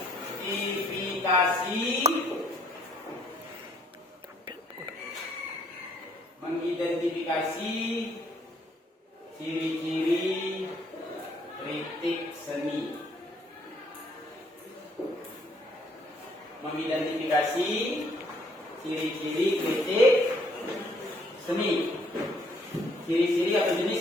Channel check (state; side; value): normal; both; correlation 0.65